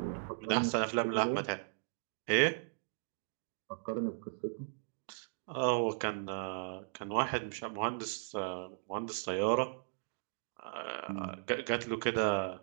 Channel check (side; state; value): left; silent; digital silence